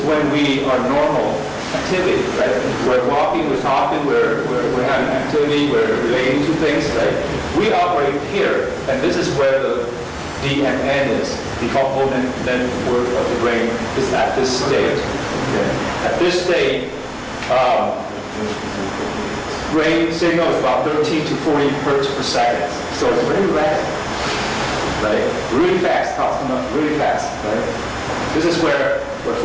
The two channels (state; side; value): identical; both; correlation 1.00